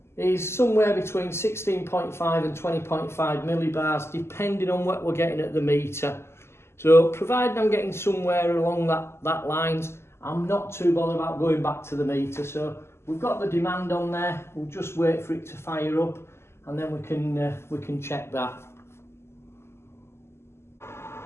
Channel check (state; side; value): late; right; 0.12 ms